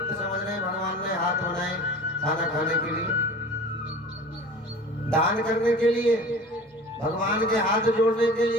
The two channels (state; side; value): normal; both; correlation 0.40